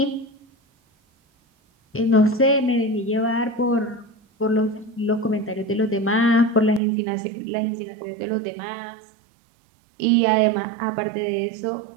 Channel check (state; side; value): drops out; left; at 6.8 s